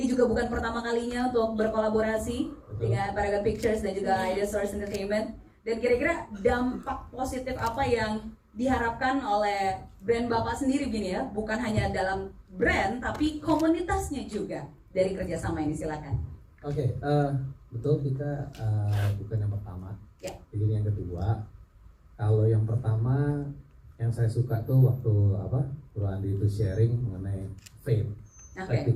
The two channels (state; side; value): identical; both; correlation 1.00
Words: juga bukan pertama kalinya untuk berkolaborasi dengan Paragon Pictures dan juga Ideal Source Entertainment. Dan kira-kira dampak positif apa yang diharapkan oleh brand Bapak sendiri gini ya, bukan hanya dalam brand tapi komunitasnya juga dari kerjasama ini, silakan. Oke, betul kita bukan yang pertama. Ya. Jadi yang kedua, kalau yang pertama yang saya suka tuh waktu Bro Andi itu sharing mengenai faith.